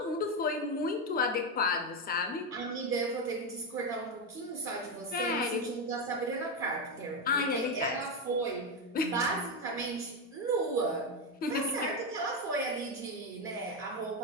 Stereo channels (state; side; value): normal; both; correlation 0.09